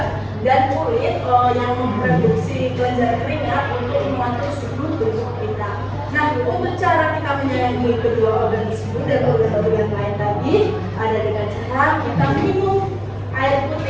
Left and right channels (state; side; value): identical; both; correlation 1.00